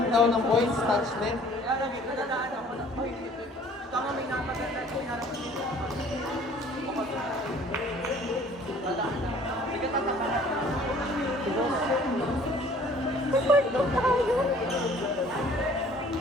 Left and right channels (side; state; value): both; normal; correlation 0.53